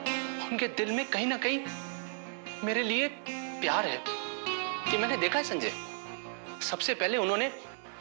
उनके दिल में कहीं ना कहीं मेरे लिए प्यार है। कि मैंने देखा है संजय, सबसे पहले उन्होंने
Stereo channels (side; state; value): left; silent; 56 dB below the other